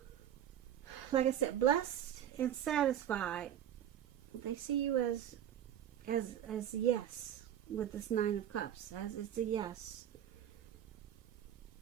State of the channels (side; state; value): left; quieter; 10.4 dB